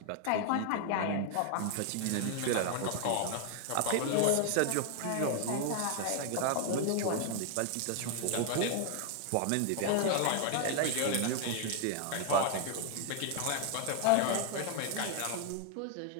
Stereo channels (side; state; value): both; different; correlation 0.00